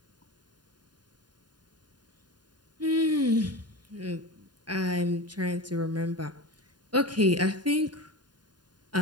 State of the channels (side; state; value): left; late; 0.70 ms